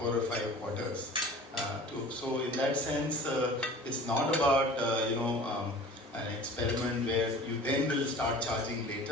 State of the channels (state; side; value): normal; both; correlation 0.43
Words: or 5 quarters. So in that sense, it's not about an experiment where you then will start charging